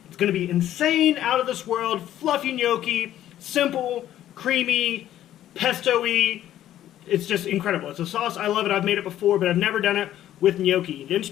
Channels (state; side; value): quieter; right; 12.3 dB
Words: It's gonna be insane, out of this world, fluffy gnocchi, simple, creamy, pesto-y. It's just incredible. It's a sauce, I love it. I've made it before, but I've never done it with gnocchi. The